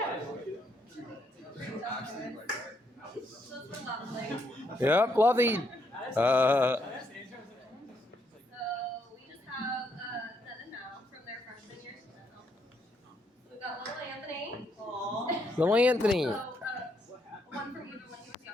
Yep, lovely. So we just have then and now from their freshman year. We've got little Anthony. Little Anthony. So, one from even when he was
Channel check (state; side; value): normal; both; correlation 0.75